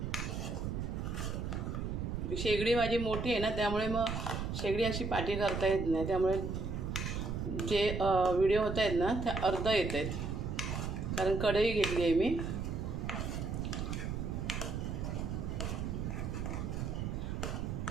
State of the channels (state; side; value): noise; right; rumble, 3 dB below the sound